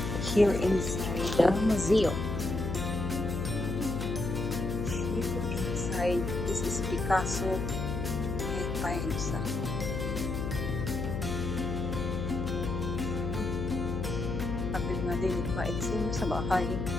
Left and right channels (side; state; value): left; noise; hum, 2 dB below the sound